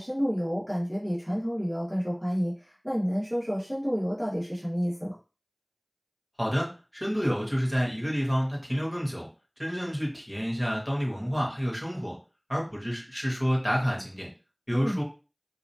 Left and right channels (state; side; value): identical; both; correlation 1.00